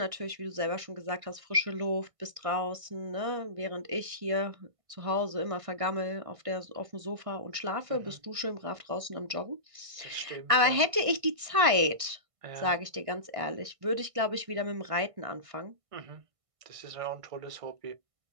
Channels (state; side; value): late; left; 1.6 ms